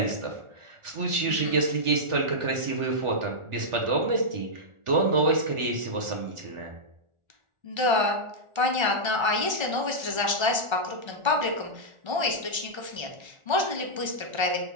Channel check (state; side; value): late; left; 1.4 ms